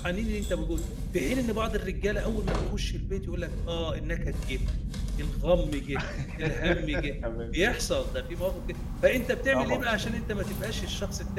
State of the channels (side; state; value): both; identical; correlation 1.00